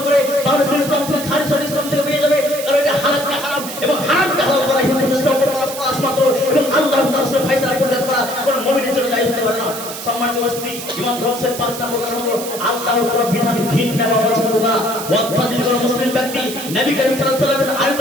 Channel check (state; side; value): noise; right; hiss, 9 dB below the sound